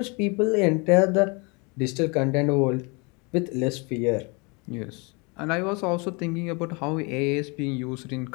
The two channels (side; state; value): right; quieter; 30.3 dB